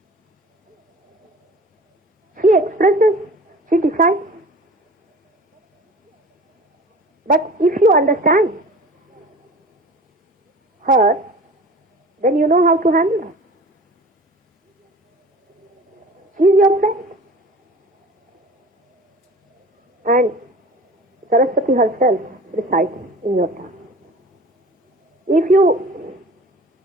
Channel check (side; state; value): both; normal; correlation 0.42